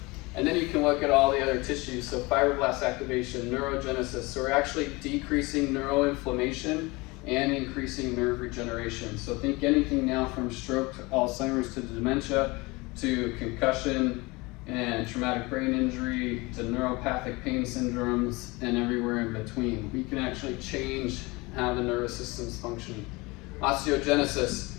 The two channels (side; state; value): right; quieter; 24.1 dB